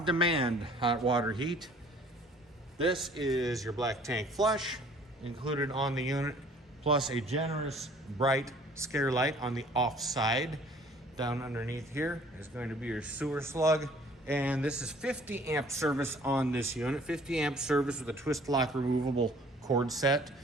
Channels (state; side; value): normal; both; correlation 0.54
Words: hot water heat. This is your black tank flush included on the unit, plus a generous bright scare light on the off side. Down underneath here is going to be your sewer slug, and this is 50 amp service on this unit. 50 amp service with a twist lock removable cord set,